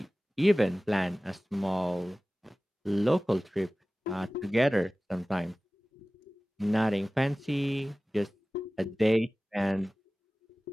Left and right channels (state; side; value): normal; both; correlation 0.97